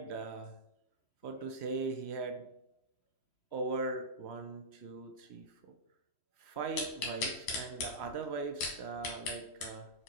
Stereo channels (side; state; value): right; late; 3.1 ms